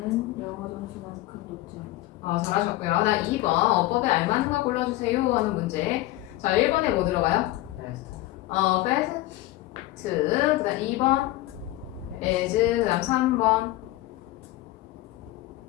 영어 점수만큼 높지 않다. 잘하셨고요. 나 2번 어법에 알맞는 거 골라주세요 하는 문제. 자, 1번에 뭐 들어가요? Fast. fast. 그 다음 2번 as. 그 다음 3번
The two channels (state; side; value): quieter; right; 17.0 dB